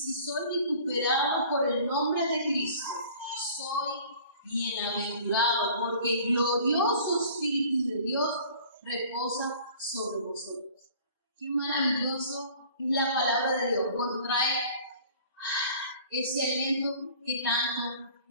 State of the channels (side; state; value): both; inverted; correlation -0.48